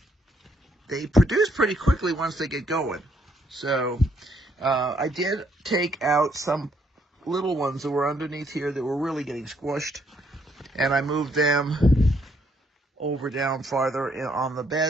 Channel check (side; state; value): both; normal; correlation 0.70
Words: They produce pretty quickly once they get going. So, I did take out some little ones that were underneath here that were really getting squished. And I moved them over down farther on the